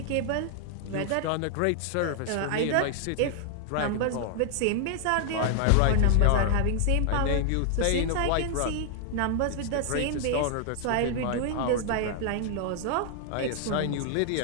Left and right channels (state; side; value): different; both; correlation 0.00